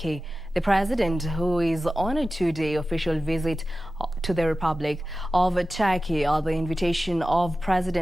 The president, who is on a two-day official visit to the Republic of Turkey at the invitation of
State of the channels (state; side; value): noise; right; hum, 30 dB below the sound